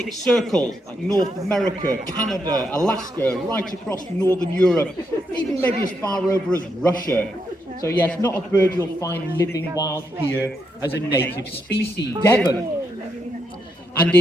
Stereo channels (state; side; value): normal; both; correlation 0.80